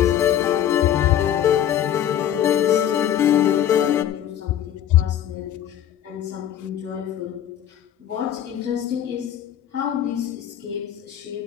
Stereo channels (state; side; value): quieter; right; 10.5 dB